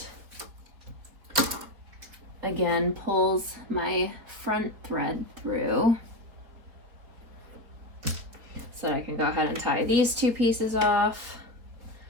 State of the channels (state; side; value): late; left; 4.4 ms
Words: again pulls my front thread through so that I can go ahead and tie these two pieces off,